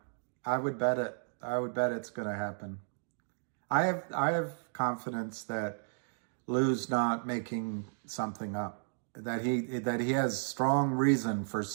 I would bet it. I would bet it's going to happen. I have confidence that Lou's not making something up. That he has strong reason for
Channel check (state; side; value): silent; left; digital silence